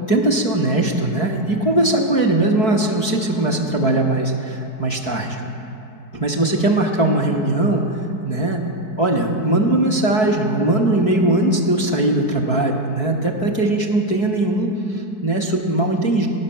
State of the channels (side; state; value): right; late; 4.6 ms